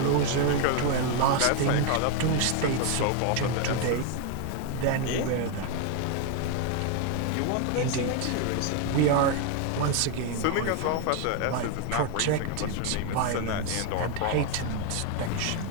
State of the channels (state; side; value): different; both; correlation 0.01